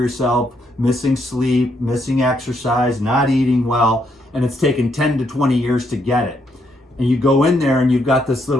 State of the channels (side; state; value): both; normal; correlation 0.75